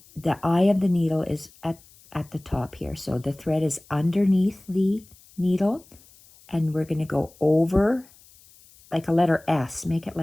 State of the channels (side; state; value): left; noise; hiss, 26 dB below the sound